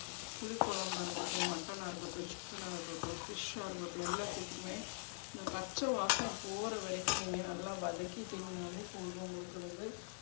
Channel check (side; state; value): right; silent; digital silence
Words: புளிக்குழம்பாக இருக்கட்டும், மட்டனாக இருக்கட்டும், சிக்கனாக இருக்கட்டும், ஃபிஷ்ஷாக இருக்கட்டும், எல்லாத்துக்குமே இந்த பச்சை வாசனை போகிற வரைக்கும் நீங்கள் நல்லா வதக்கி தின்னாலே போதும். உங்களுக்கு வந்து